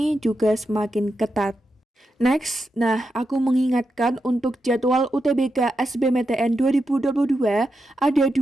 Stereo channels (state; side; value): normal; both; correlation 0.87